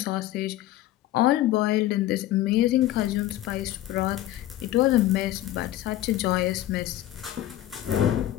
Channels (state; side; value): quieter; right; 14.2 dB